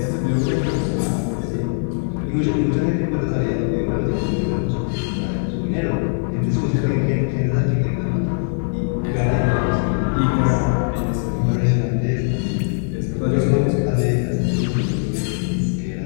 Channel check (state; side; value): silent; right; digital silence